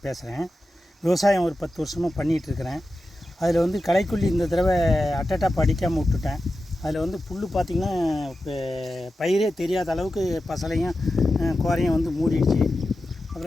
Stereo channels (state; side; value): normal; both; correlation 0.92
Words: பேசுகிறேன். விவசாயம் ஒரு 10 வருஷமாக பண்ணிகிட்ருக்கிறேன். அதில் வந்து களைக்கொல்லி இந்த தடவை அட்டட்டாப் அடிக்காமல் விட்டுட்டேன். அதில் வந்து புல் பார்த்திங்கன்னா இப்போ பயிரே தெரியாத அளவுக்கு பசலையும் கோரையும் வந்து மூடிடுச்சு.